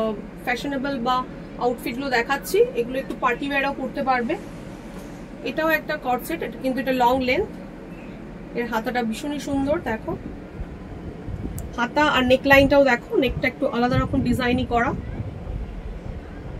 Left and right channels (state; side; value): identical; both; correlation 1.00